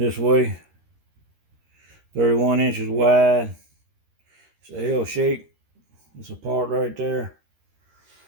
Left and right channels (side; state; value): left; late; 13 ms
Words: way, 31 inches wide. It's a L shape. It's a part right there.